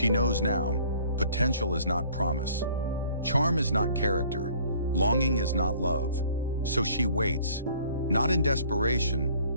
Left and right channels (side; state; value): both; inverted; correlation -0.55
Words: knows now, potential is not promise. Charm is not character. Longing is not love. So she waits, not in